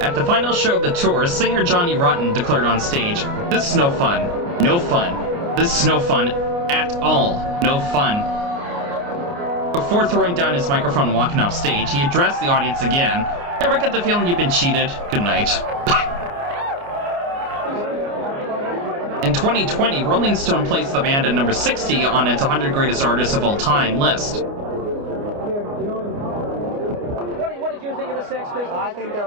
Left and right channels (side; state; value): left; late; 29 ms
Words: At the final show of the tour, singer Johnny Rotten declared on stage, "This is no fun. No fun. This is no fun at all. No fun." Before throwing down his microphone and walking off stage, he addressed the audience again. "Ever get the feeling you've been cheated? Good night." In 2020, Rolling Stone placed the band at number 60 on its 100 Greatest Artists of All Time list. What did you think of the Sex Pistols? I think